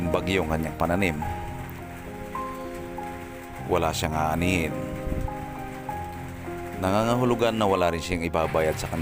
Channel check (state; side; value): identical; both; correlation 1.00